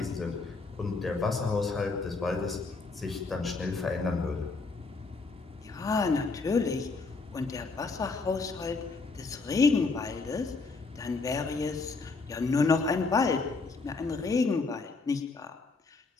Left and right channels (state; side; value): quieter; right; 4.0 dB